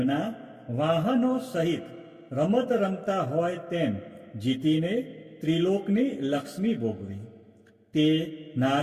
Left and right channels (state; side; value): identical; both; correlation 1.00